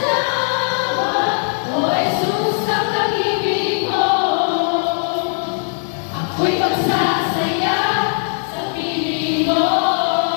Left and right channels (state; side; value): silent; right; 62 dB below the other